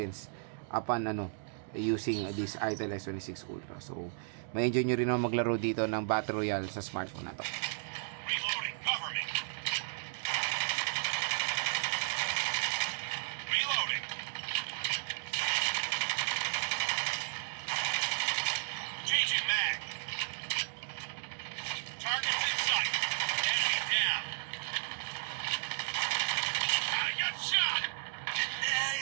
upon using this Itel S26 Ultra. So, may enjoy nyo rin naman maglaro dito ng Battle Royale sa smartphone na to. Reloading, cover me. Reloading.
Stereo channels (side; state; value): left; silent; digital silence